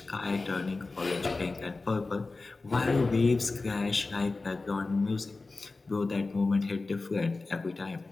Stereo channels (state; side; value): quieter; right; 3.6 dB